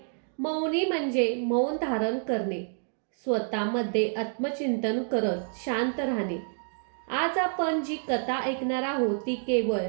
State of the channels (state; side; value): silent; left; 59 dB below the other